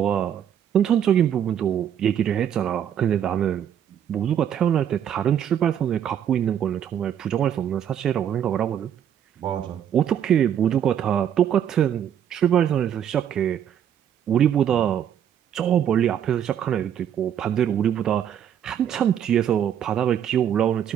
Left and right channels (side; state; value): left; quieter; 9.5 dB